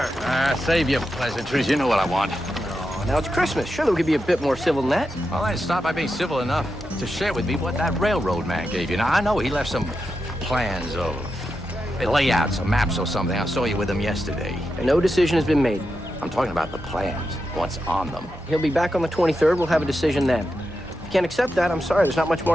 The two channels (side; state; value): both; normal; correlation 0.88